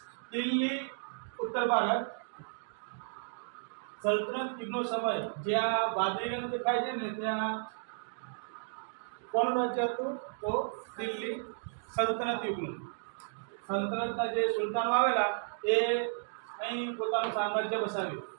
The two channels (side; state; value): left; silent; digital silence